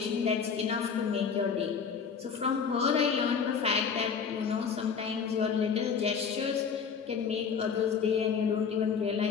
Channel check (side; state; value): right; quieter; 6.3 dB